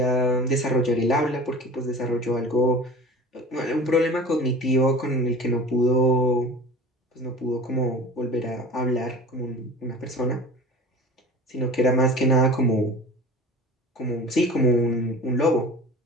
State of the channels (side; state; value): both; normal; correlation 0.38